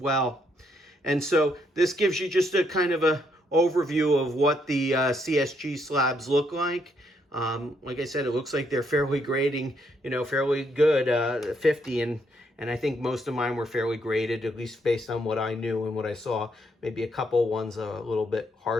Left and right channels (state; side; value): normal; both; correlation 0.74